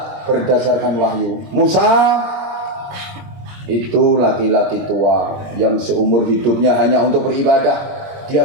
berdasarkan wahyu. Musa itu laki-laki tua yang seumur hidupnya hanya untuk beribadah.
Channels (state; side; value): late; left; 22 ms